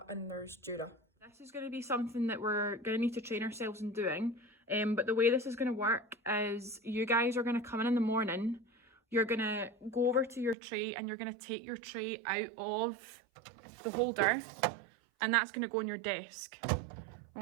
and there's Jura. This is going to be something that we're going to need to train ourselves in doing, but the way this is going to work is you guys are going to come in the morning, you're going to go over to your tray and you're going to take your tray out of the holder, and that's going to go on your desk.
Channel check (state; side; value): drops out; left; at 10.6 s